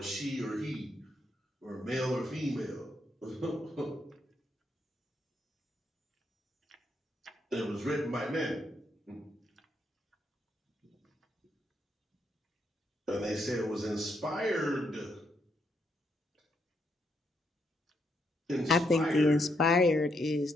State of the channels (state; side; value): normal; both; correlation 0.77